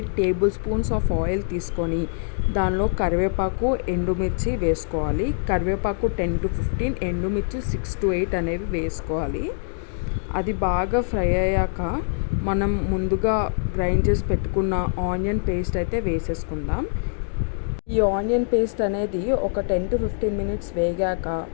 table spoons of oil తీసుకొని దానిలో కరివేపాకు, ఎండుమిర్చి వేసుకోవాలి. కరివేపాకు 10 to 15, ఎండుమిర్చి 6 to 8 అనేవి వేసుకోవాలి. అది బాగా ఫ్రై అయ్యాక మనం ముందుగా గ్రైండ్ చేసి పెట్టుకున్న ఆనియన్ పేస్ట్ అయితే వేసేసుకుందాం. ఈ ఆనియన్ పేస్ట్ అనేది ఒక 10 to 15 minutes వేగాక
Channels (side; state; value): right; silent; digital silence